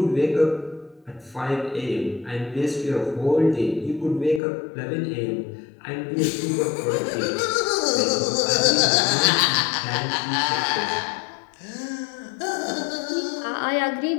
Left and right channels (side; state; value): right; drops out; at 4.4 s